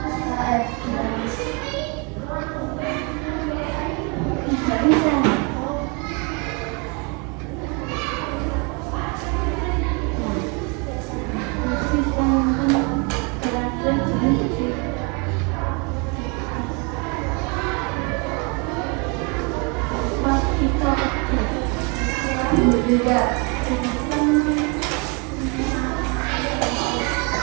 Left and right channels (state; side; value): quieter; left; 32.4 dB